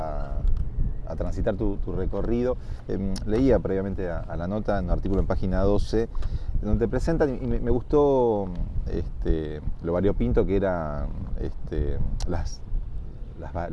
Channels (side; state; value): both; identical; correlation 1.00